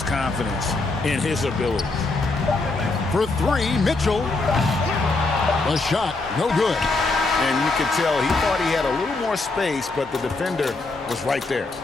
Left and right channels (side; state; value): right; quieter; 3.4 dB